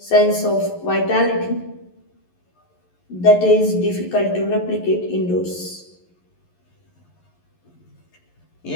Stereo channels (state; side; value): late; right; 11 ms